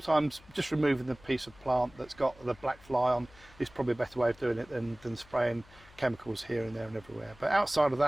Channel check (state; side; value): noise; left; hum, 24 dB below the sound